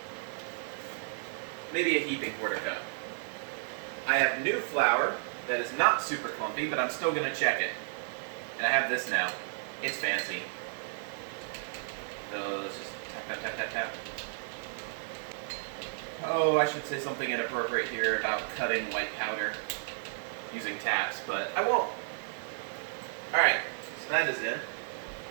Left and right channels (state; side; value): silent; left; 56 dB below the other